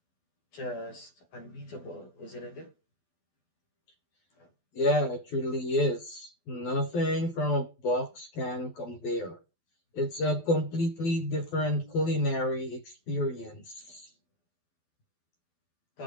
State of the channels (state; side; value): late; right; 12 ms